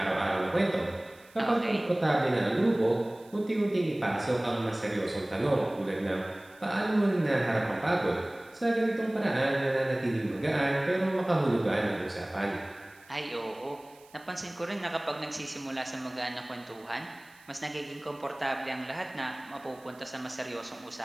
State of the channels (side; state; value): right; noise; hiss, 27 dB below the sound